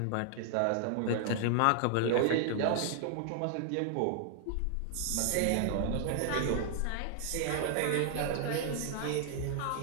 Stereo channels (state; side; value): different; both; correlation 0.00